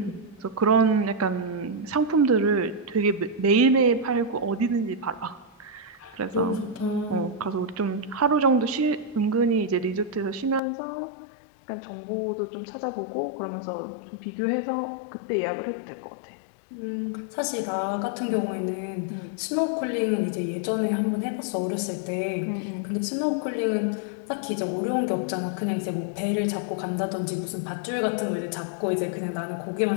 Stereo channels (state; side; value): drops out; right; at 10.6 s